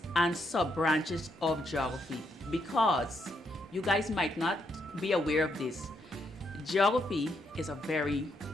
and sub-branches of geography because you guys might not be aware of this. Geography is a very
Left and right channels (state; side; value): normal; both; correlation 0.77